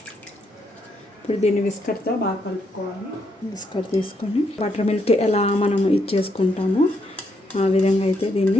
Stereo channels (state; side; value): normal; both; correlation 0.77